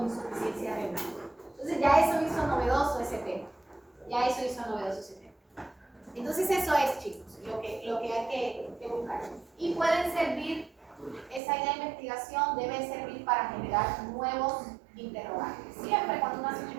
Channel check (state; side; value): drops out; left; at 11.4 s